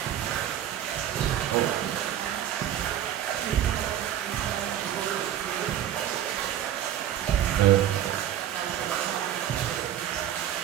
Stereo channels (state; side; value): quieter; left; 11.1 dB